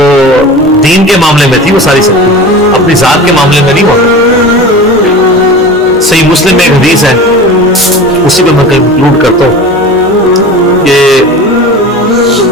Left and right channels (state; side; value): normal; both; correlation 0.34